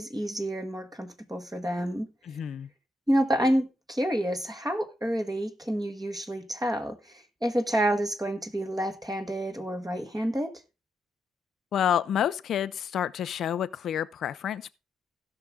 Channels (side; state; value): both; normal; correlation 0.82